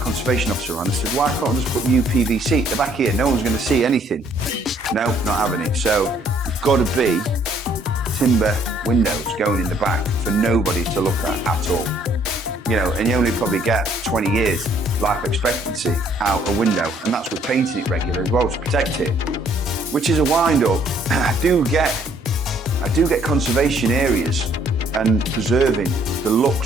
conservation officer around and said, why can't I just put new PVC at the back here? No one's going to see anything. No, not having it. So it's got to be timber windows going in the back for nobody to look at all. You know, and you only probably get 20 years life expectancy out a window, and that's with painting it regular as well to protect it, which is a wind up. I do get conservation areas and preserving the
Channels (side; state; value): both; normal; correlation 0.64